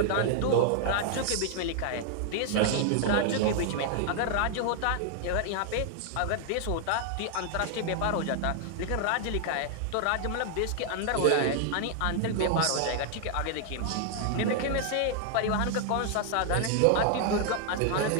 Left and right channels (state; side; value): different; both; correlation 0.00